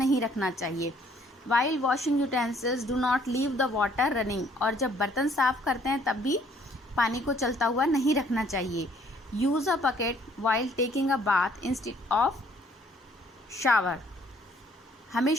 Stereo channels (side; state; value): both; normal; correlation 0.63